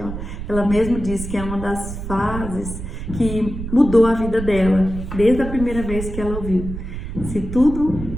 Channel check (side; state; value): right; noise; rumble, 8 dB below the sound